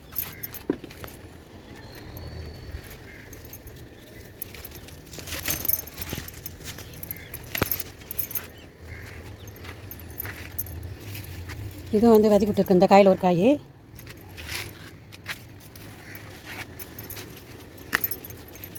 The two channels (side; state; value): both; identical; correlation 1.00